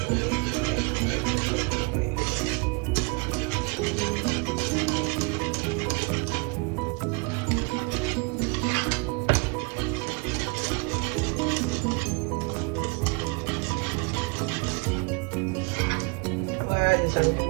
les amis, vous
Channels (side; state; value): left; quieter; 31.5 dB